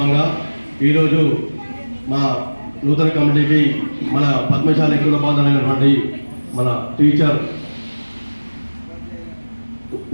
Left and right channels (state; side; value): inverted; both; correlation -1.00